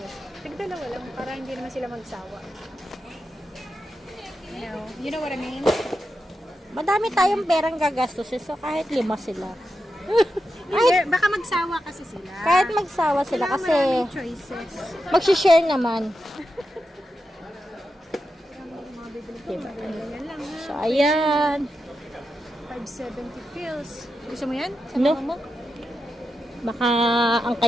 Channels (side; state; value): both; normal; correlation 0.89